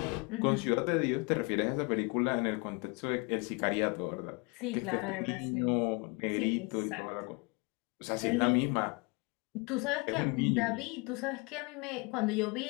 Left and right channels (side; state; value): right; quieter; 29.7 dB